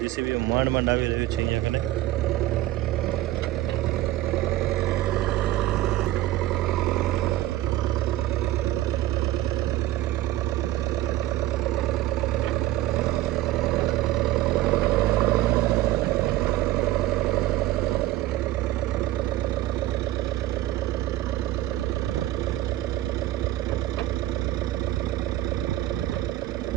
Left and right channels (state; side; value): quieter; left; 15.2 dB